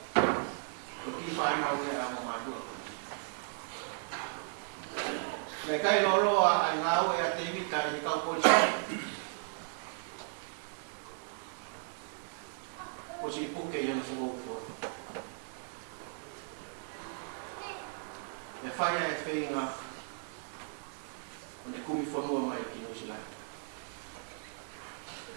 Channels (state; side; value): silent; left; 54 dB below the other